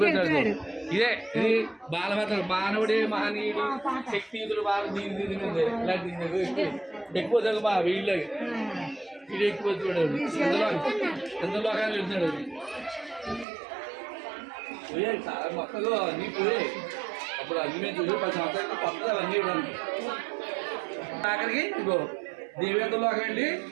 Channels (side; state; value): left; drops out; at 13.5 s